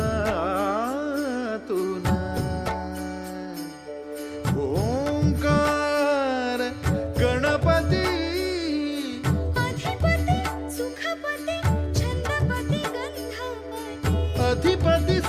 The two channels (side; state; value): both; identical; correlation 1.00